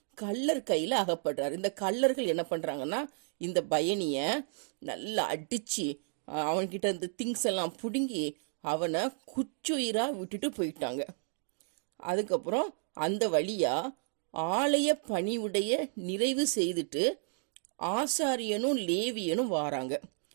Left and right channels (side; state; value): left; silent; 56 dB below the other